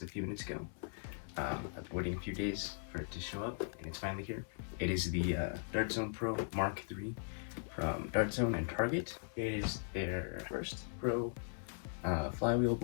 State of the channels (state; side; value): silent; right; 52 dB below the other